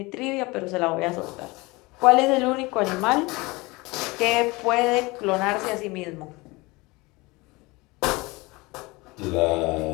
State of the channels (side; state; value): right; quieter; 23.6 dB